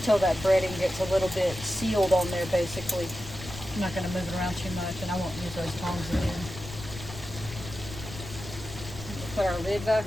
that breading gets a little bit sealed on there basically. I'm not going to move it around too much, and I won't use those tongs again. Put our lid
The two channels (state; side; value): noise; left; rumble, 12 dB below the sound